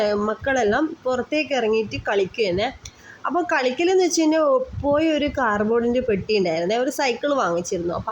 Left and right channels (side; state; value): both; identical; correlation 1.00